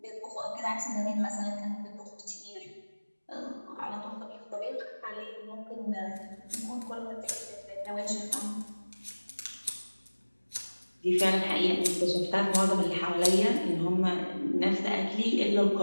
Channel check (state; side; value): inverted; both; correlation -1.00